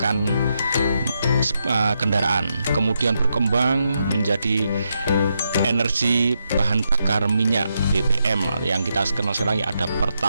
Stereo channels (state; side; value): inverted; both; correlation -0.82